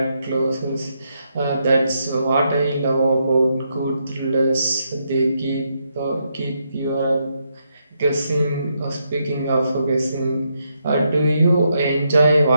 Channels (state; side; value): inverted; both; correlation -0.80